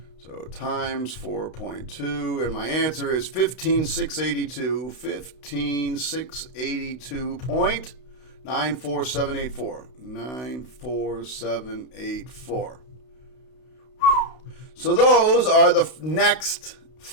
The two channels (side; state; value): right; late; 32 ms